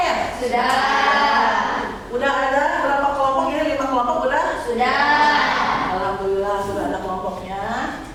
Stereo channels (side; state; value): both; identical; correlation 1.00